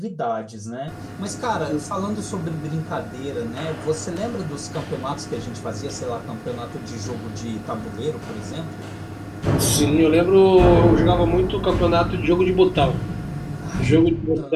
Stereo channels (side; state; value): both; identical; correlation 1.00